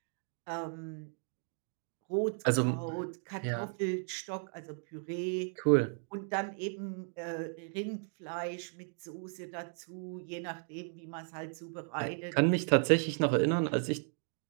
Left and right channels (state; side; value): silent; left; 54 dB below the other